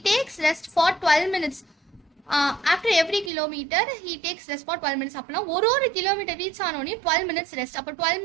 takes rest for 12 minutes. After every kilometre he takes rest for 12 minutes. அப்படின்னா ஒரு கிலோமீட்டர் ரீச் ஆனோடனே 12 minutes ரெஸ்ட். அப்போ 12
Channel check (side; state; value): left; drops out; at 3.3 s